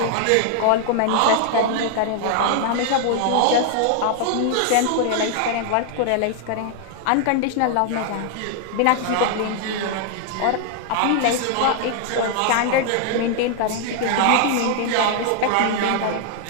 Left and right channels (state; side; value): different; both; correlation 0.00